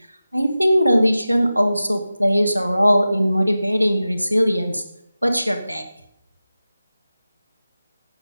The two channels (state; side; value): inverted; both; correlation -0.95